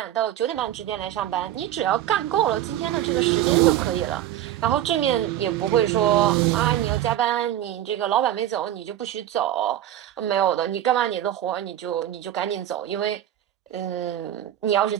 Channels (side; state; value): left; quieter; 12.1 dB